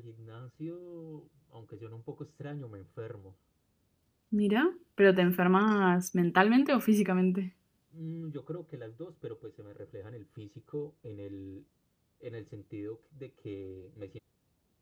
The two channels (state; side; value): identical; both; correlation 1.00